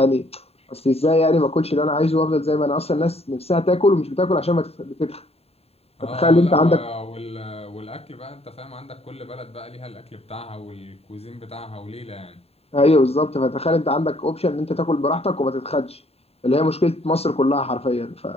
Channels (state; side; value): late; right; 0.29 ms